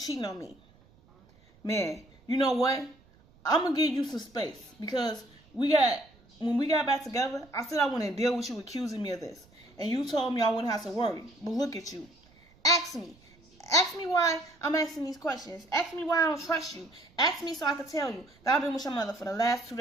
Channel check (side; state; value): right; noise; rumble, 29 dB below the sound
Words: on me. Man, you know what? I'm going to give you some space. Because when we got back together, I said I wouldn't deal with you accusing me of this. And you told me I wouldn't have to worry. But look at you. Ask me. Ask me why I'm asking these questions. Ask me why I don't trust you. Ask me so I can tell you that I've been with your mother for the last 2